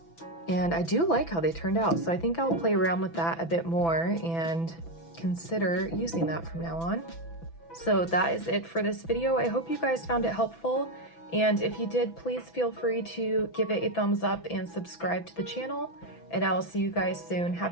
And I do like how they turned out, so I think I'll play around with that a bit more and consider using that from now on. So that is it for this video. I hope you guys found it helpful, and if you did, please feel free to give it a thumbs up and subscribe to the channel, and I will see you guys soon.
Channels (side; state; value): right; late; 6.0 ms